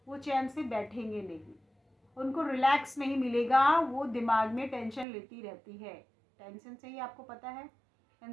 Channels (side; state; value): left; drops out; at 5.1 s